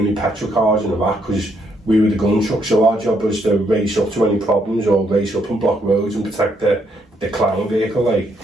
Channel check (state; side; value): normal; both; correlation 0.74